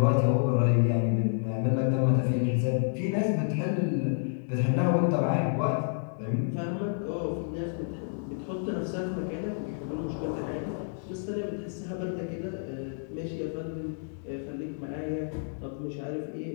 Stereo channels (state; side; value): silent; right; digital silence